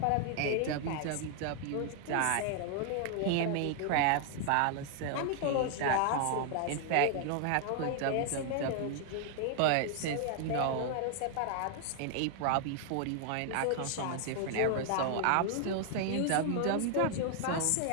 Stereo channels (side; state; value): both; different; correlation 0.00